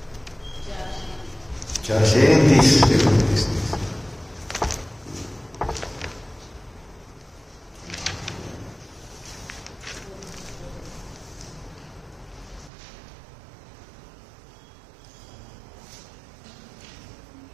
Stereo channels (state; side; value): drops out; left; at 12.7 s